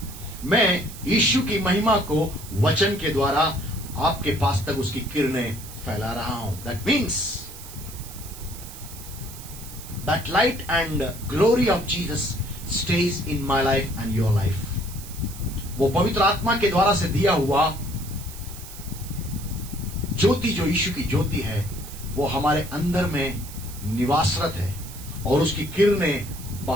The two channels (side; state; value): right; noise; hiss, 14 dB below the sound